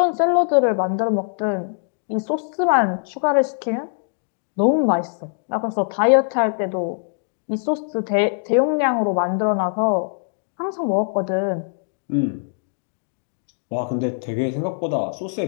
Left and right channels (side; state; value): right; silent; digital silence